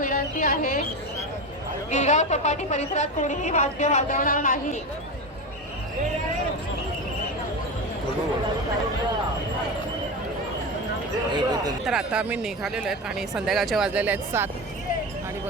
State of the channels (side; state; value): both; normal; correlation 0.21